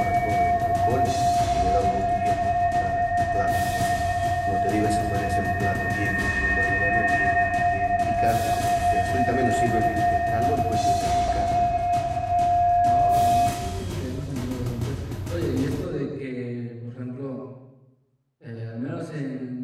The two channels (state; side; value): identical; both; correlation 1.00